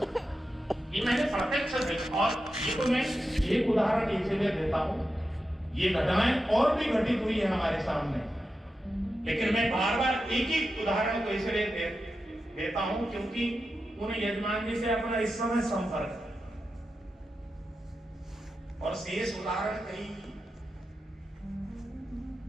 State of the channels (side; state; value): both; normal; correlation 0.90